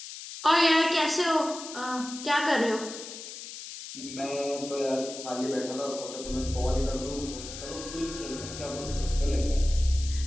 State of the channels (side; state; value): left; noise; hiss, 11 dB below the sound